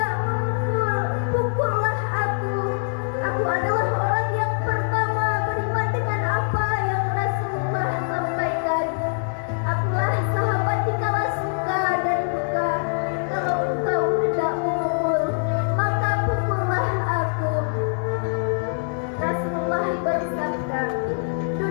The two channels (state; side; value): silent; right; digital silence